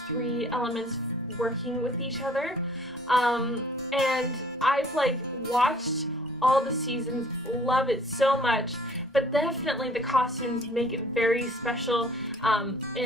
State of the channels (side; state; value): both; normal; correlation 0.55